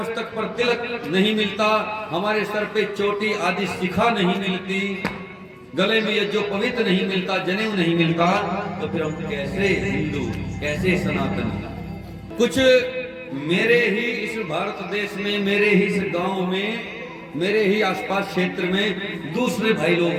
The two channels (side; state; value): both; identical; correlation 1.00